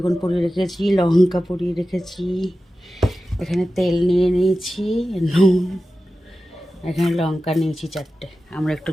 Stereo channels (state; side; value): normal; both; correlation 0.94